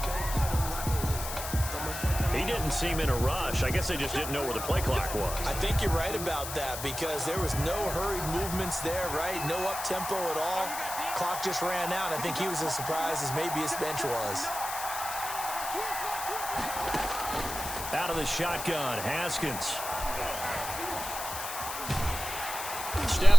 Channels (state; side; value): noise; left; hiss, 7 dB below the sound